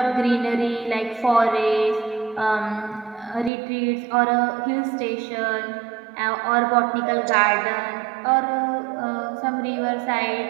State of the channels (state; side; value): drops out; left; at 3.5 s